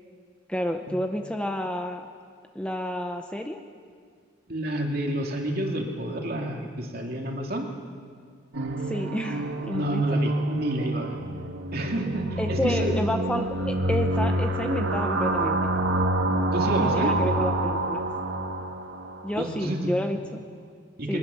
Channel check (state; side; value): normal; both; correlation 0.53